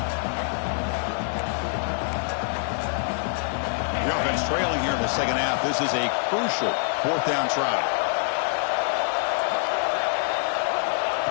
Trailing here in the 2nd half. This is a crucial 4th down try.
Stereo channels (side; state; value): right; silent; digital silence